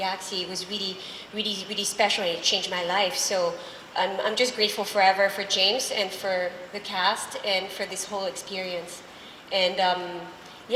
it was really, really, really special, and it changed my life. So I'm just grateful forever for James and for the cast and for this whole experience. And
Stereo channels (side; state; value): both; identical; correlation 1.00